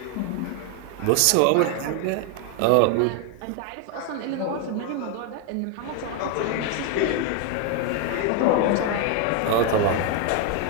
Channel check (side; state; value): both; different; correlation 0.01